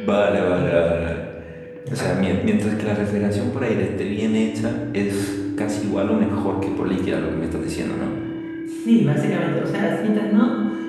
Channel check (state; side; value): identical; both; correlation 1.00